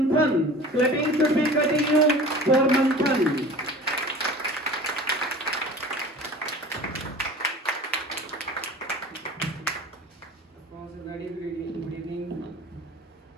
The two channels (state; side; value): normal; both; correlation 0.40